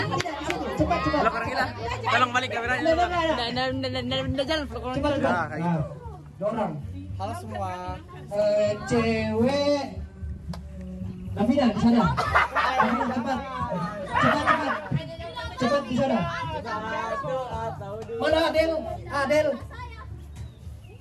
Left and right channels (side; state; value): both; identical; correlation 1.00